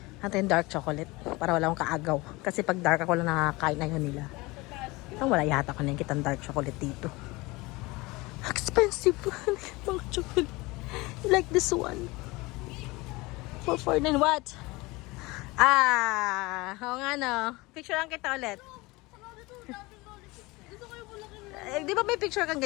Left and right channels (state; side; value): quieter; right; 22.8 dB